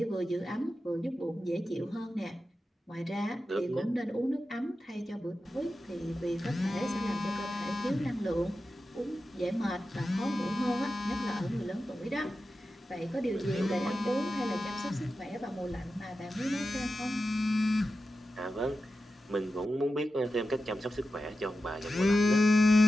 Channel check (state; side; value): normal; both; correlation 0.91